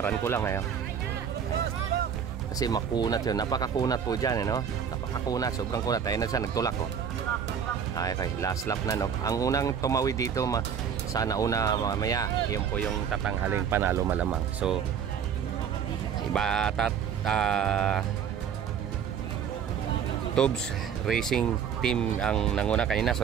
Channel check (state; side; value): quieter; left; 7.8 dB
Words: ko lang ngayon. Kasi makunat yun. Napakakunat po dyan no. Napakakunat, sobrang kunat. Ayun na siya, nagtulak oh. Okay, last lap na no. Ang unang tumawid dito sana una mamaya, yun po yung tatanghaling panalo malamang. So iba Tubes Racing Team ang nanguna kanina. So